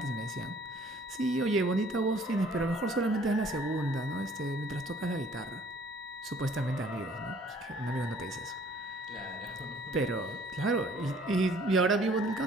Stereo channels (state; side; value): normal; both; correlation 0.56